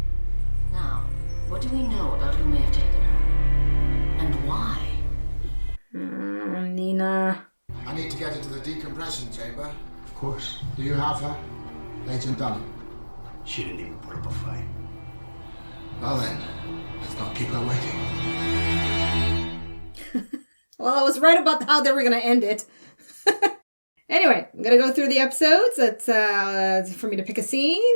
Now, information chamber. Of course. Do you have her? Agent Dunham. She didn't even put up a fight. Well then, let's not keep her waiting. Well, I was right about how they were going to end it. Anyway, I'm going to go through the episodes. It's for me to pick a scene,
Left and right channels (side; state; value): both; inverted; correlation -1.00